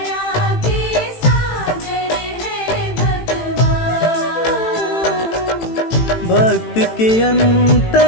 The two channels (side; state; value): right; late; 18 ms